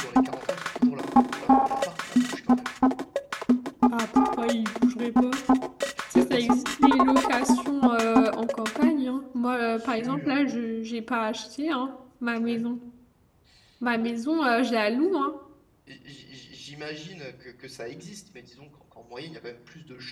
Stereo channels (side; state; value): both; identical; correlation 1.00